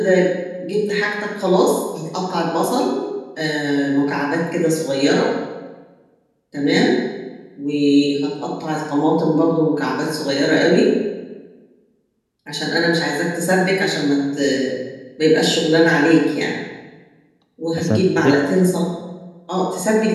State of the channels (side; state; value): both; identical; correlation 1.00